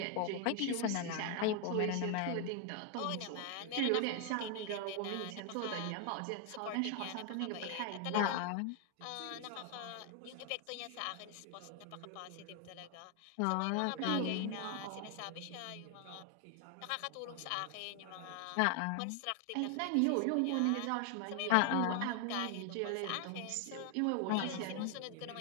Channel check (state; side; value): different; both; correlation 0.00